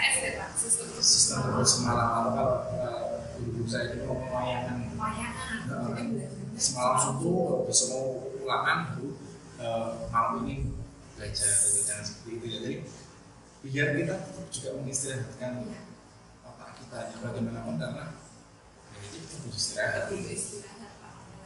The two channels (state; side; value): identical; both; correlation 1.00